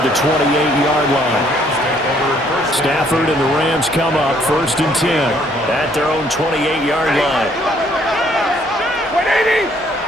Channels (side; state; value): both; normal; correlation 0.65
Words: 28-yard line. Stafford and the Rams come up 1st and 10 at their own 28-yard line.